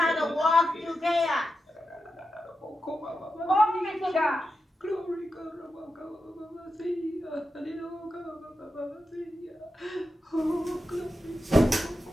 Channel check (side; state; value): both; normal; correlation 0.89